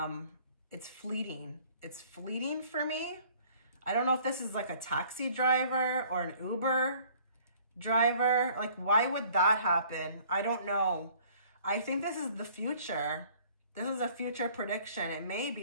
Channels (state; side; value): inverted; both; correlation -0.55